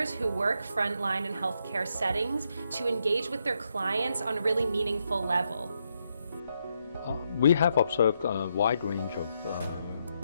who work frontline in healthcare settings to engage with their clients on a really meaningful level. We have observed a wide range of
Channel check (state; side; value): inverted; both; correlation -0.80